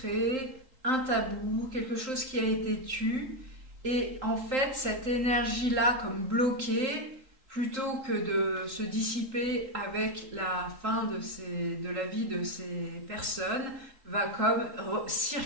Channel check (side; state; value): left; late; 3.8 ms